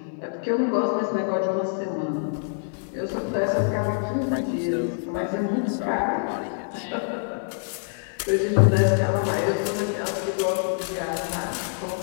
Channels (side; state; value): right; silent; 61 dB below the other